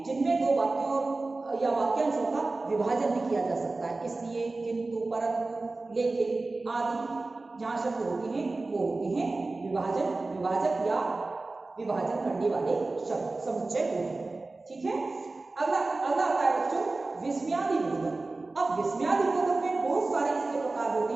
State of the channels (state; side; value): quieter; left; 3.3 dB